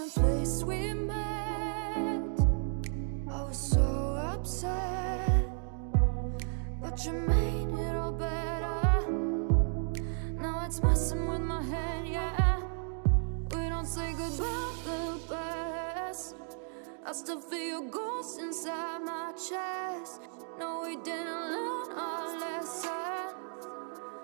place we met. I was so upset, but you made it all better. Now it's messing with my head, yeah. We don't say goodbye the best. I still feel your ghost inside my chest. No, we didn't learn our lesson,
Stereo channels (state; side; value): silent; left; 55 dB below the other